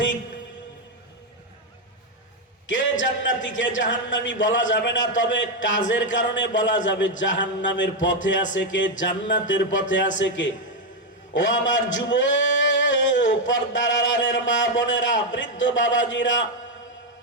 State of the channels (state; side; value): normal; both; correlation 0.03